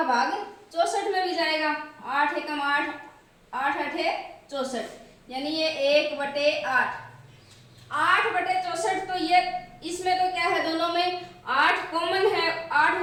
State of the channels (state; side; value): identical; both; correlation 1.00